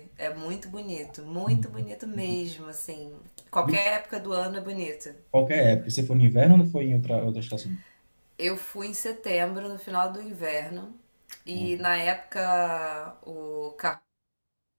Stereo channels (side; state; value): both; inverted; correlation -1.00